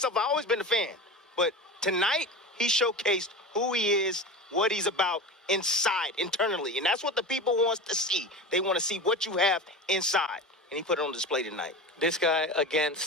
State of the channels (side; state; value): both; normal; correlation 0.28